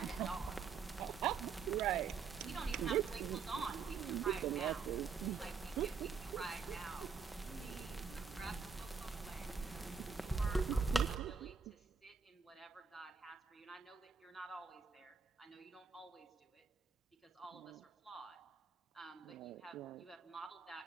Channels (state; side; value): quieter; left; 5.7 dB